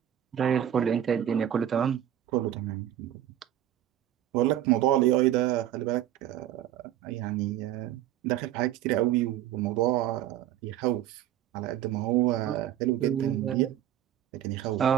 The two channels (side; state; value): left; quieter; 11.6 dB